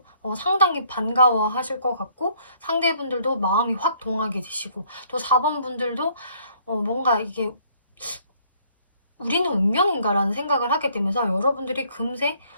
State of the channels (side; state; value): both; inverted; correlation -0.62